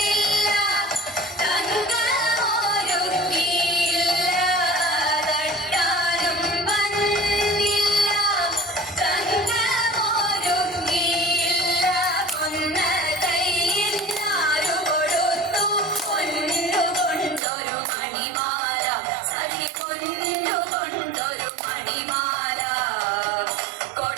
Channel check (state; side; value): drops out; left; at 17.4 s